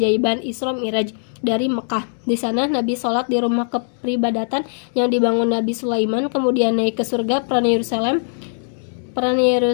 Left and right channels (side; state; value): right; silent; digital silence